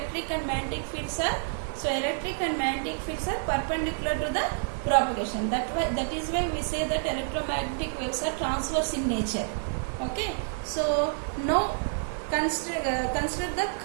and magnetic fields are. So electric and magnetic fields are perpendicular to the propagation. That is why we say that electromagnetic waves are transverse in nature. Okay. So now consider the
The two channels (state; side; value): silent; left; digital silence